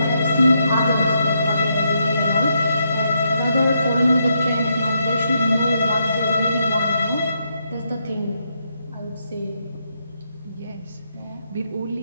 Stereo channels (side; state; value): both; inverted; correlation -0.78